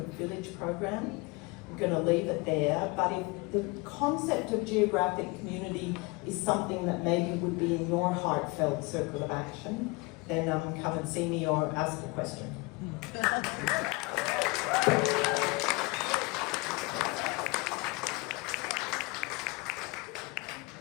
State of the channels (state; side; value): quieter; right; 26.2 dB